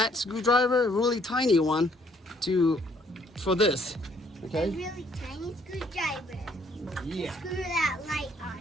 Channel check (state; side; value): normal; both; correlation 0.65